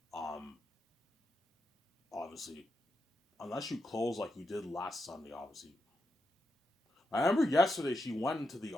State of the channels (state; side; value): normal; both; correlation 0.86